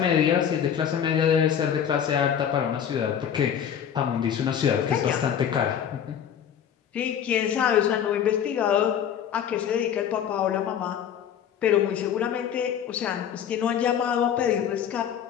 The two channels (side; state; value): right; quieter; 8.8 dB